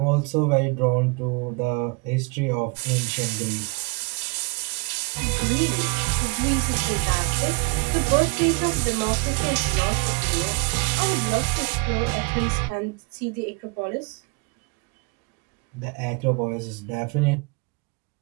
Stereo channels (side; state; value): left; quieter; 30.0 dB